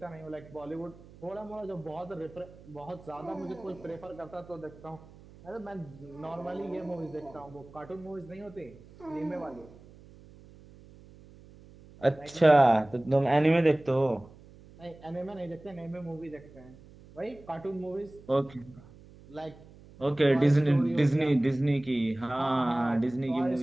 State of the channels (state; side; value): noise; right; hum, 22 dB below the sound